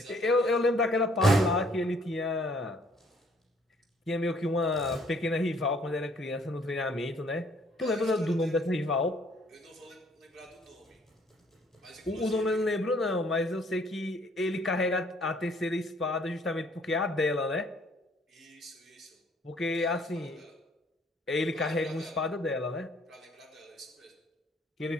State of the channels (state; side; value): normal; both; correlation 0.62